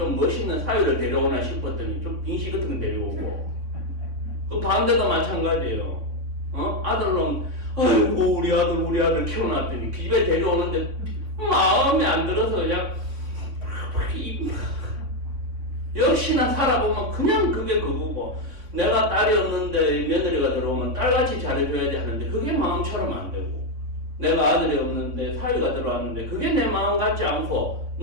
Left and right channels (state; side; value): late; left; 3.6 ms